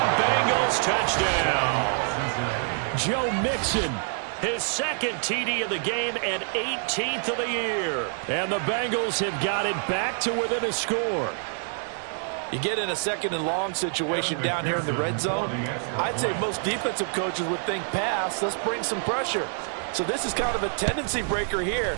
Bengals touchdown. Joe Mixon, his 2nd TD of the game and 18th of the year. And the Bengals have got it back to within a score. You get in a 2nd and long situation down here in the red zone. I'd say most defensive coaches would think pass. Let's bring some pressure. So this is kind of a tendency breaker here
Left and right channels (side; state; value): left; silent; 60 dB below the other